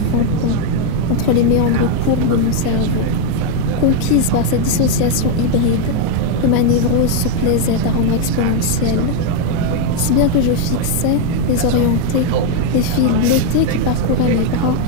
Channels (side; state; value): both; different; correlation 0.01